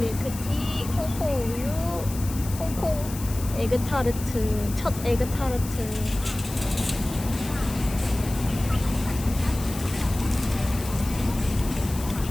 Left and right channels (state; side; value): noise; left; hiss, 12 dB below the sound